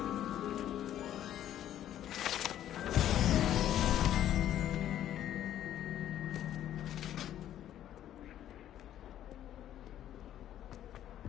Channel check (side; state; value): right; quieter; 11.6 dB